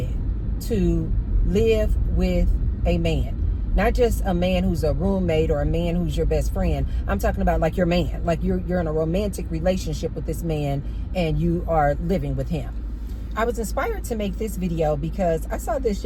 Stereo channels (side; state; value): both; identical; correlation 1.00